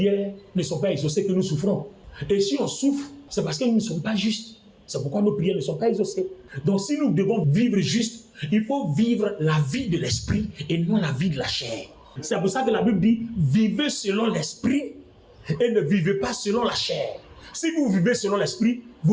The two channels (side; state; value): both; identical; correlation 1.00